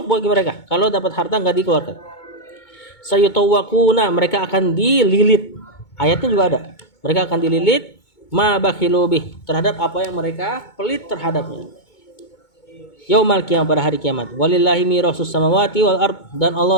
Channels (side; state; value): right; late; 2.2 ms